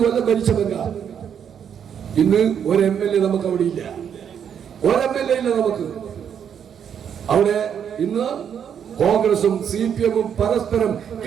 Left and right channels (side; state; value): left; quieter; 8.3 dB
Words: കൊല്ലം ഭരിച്ച ബംഗാൾ. ഇന്ന് ഒരു MLA നമുക്ക് അവിടെ ഇല്ല, ഒരു MLA ഇല്ല നമുക്ക് അവിടെ. ഇന്ന് കോൺഗ്രസും CPM-ഉം പരസ്പരം